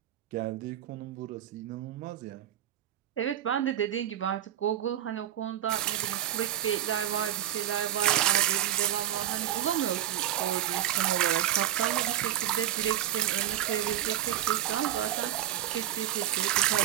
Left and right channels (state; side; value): quieter; left; 11.7 dB